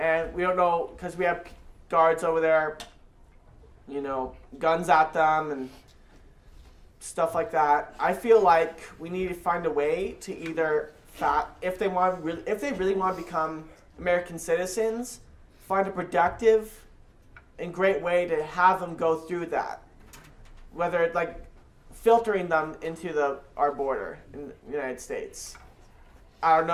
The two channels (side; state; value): both; identical; correlation 1.00